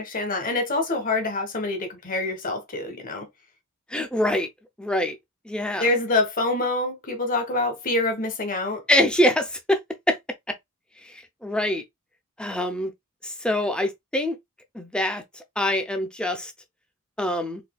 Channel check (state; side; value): normal; both; correlation 0.34